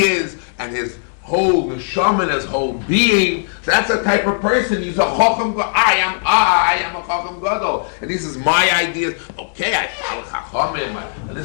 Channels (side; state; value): right; silent; digital silence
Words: is and his whole neshama, his whole being. So that's the type of person. He's a chacham. I am a chacham gadol, and this is my ideas. Okay, I follow chachamim, and